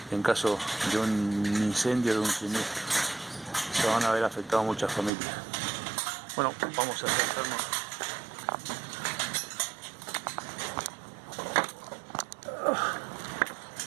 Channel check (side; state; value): left; drops out; at 5.1 s